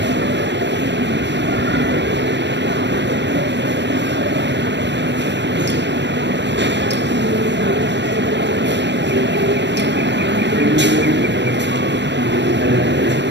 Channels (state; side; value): late; left; 0.52 ms